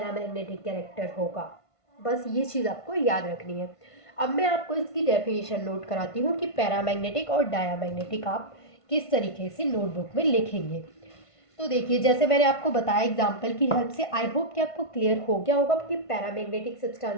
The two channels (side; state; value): right; late; 1.5 ms